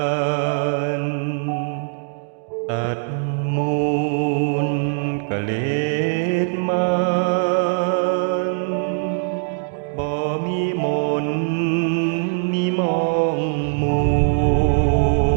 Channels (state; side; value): silent; left; digital silence